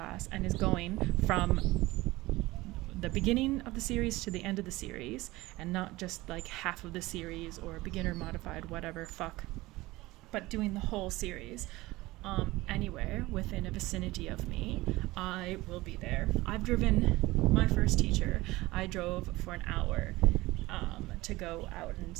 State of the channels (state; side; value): quieter; left; 19.6 dB